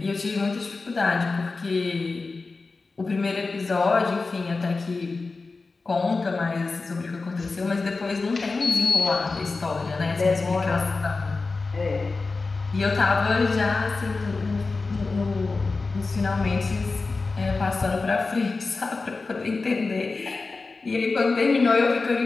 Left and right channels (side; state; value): right; quieter; 3.9 dB